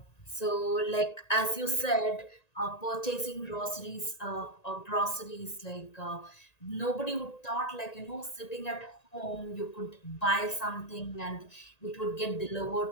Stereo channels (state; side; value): late; right; 1.9 ms